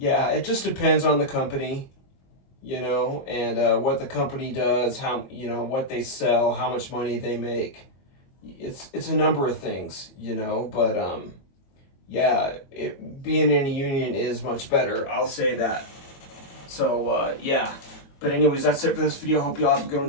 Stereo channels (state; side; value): late; right; 22 ms